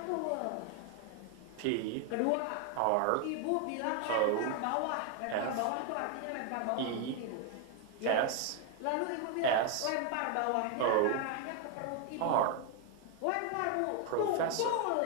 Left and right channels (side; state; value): both; different; correlation 0.01